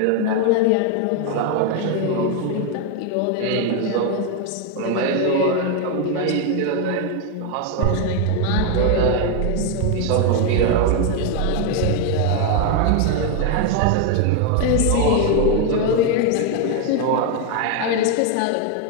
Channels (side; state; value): both; different; correlation 0.01